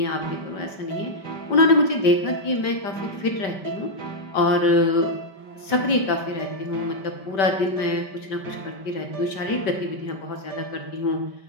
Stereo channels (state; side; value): late; right; 5.1 ms